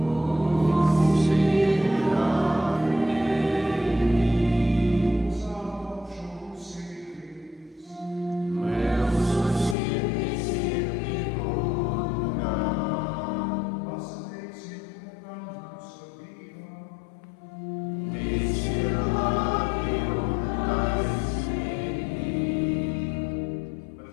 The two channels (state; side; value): drops out; right; at 9.8 s